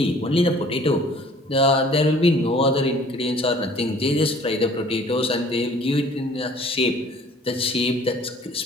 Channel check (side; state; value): both; normal; correlation 0.53